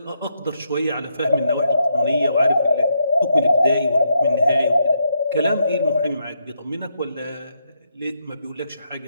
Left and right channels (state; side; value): inverted; both; correlation -0.79